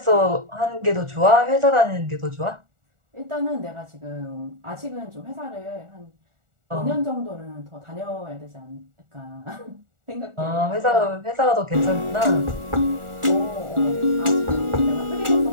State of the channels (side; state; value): left; late; 1.4 ms